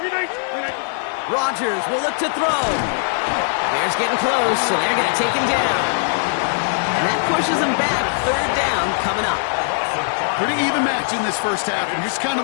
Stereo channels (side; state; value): right; silent; digital silence